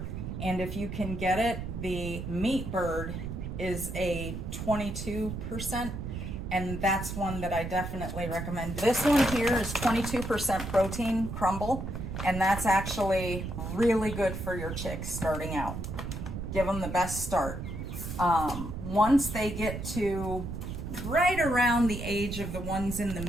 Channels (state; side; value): noise; right; rumble, 6 dB below the sound